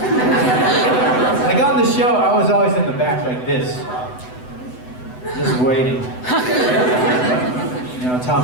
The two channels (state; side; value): late; right; 8.0 ms